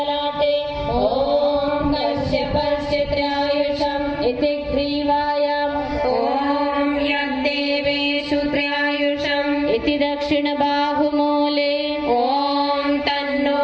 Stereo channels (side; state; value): both; identical; correlation 1.00